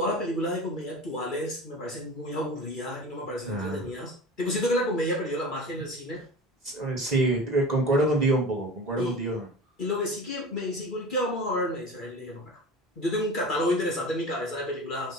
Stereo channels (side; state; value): both; normal; correlation 0.34